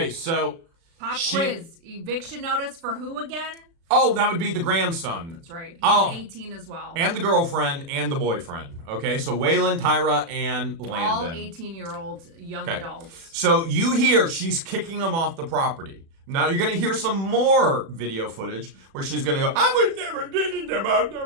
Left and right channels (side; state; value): left; late; 36 ms